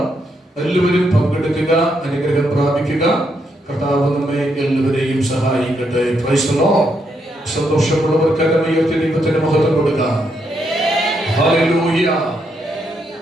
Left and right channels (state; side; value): normal; both; correlation 0.78